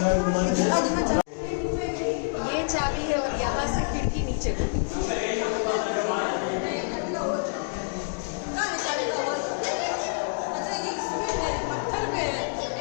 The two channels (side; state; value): right; silent; digital silence